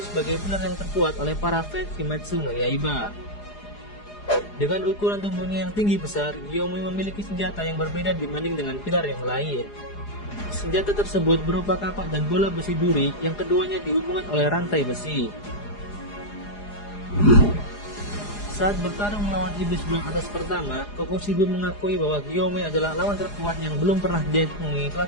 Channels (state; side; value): late; right; 4.8 ms